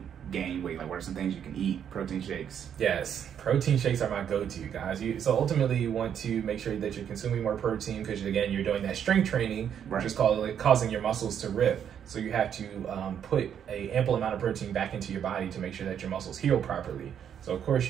gain weight? Like, what are some things you can eat? Protein shakes. Yes, protein shakes are my go-to, guys. So ultimately, you want to make sure that you're consuming more protein because, again, you're doing that strength training, which is causing your muscles to rip. So you have to put an ample amount of protein back into your body to make sure that your muscles heal properly. So of course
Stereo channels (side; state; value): left; quieter; 8.7 dB